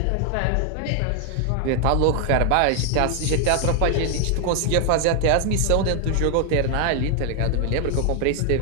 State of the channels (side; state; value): both; different; correlation 0.00